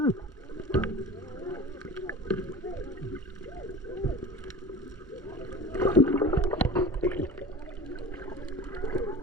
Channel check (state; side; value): normal; both; correlation 0.36